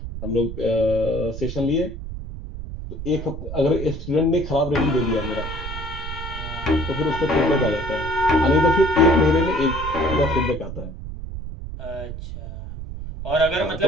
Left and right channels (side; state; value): right; noise; rumble, 8 dB below the sound